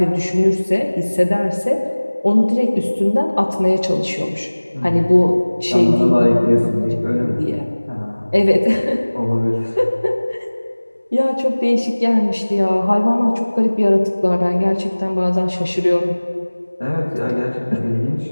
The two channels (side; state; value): both; inverted; correlation -1.00